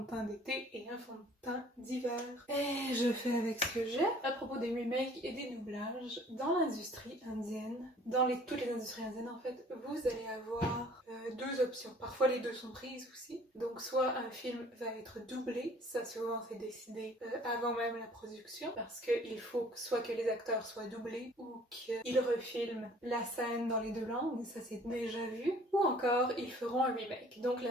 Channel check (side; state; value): both; normal; correlation 0.53